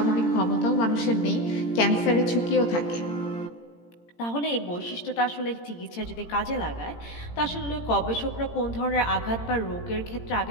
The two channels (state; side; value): late; right; 17 ms